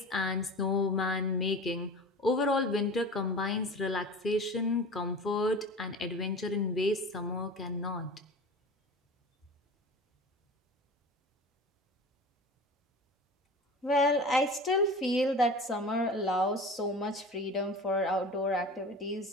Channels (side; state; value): both; normal; correlation 0.36